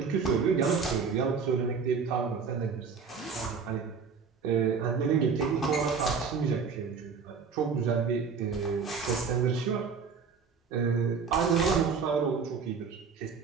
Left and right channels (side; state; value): left; quieter; 5.6 dB